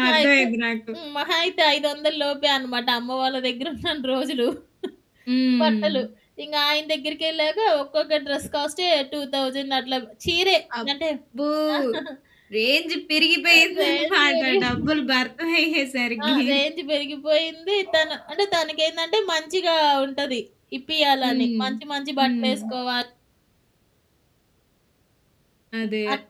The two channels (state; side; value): identical; both; correlation 1.00